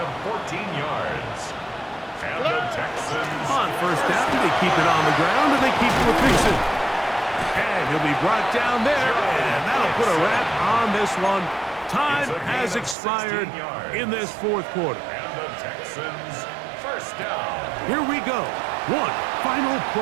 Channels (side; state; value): left; drops out; at 13.0 s